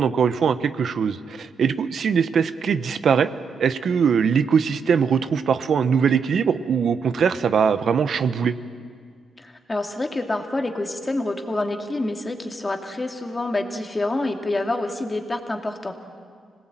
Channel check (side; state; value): left; quieter; 4.6 dB